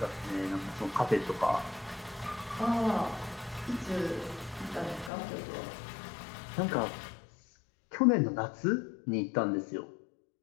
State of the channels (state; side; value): drops out; right; at 5.1 s